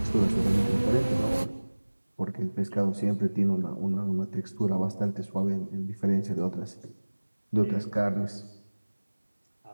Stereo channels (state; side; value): inverted; both; correlation -1.00